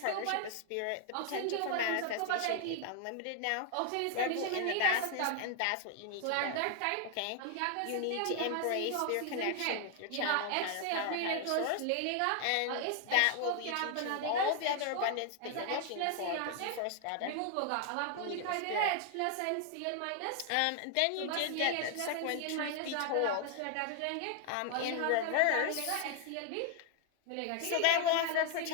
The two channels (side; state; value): both; different; correlation 0.00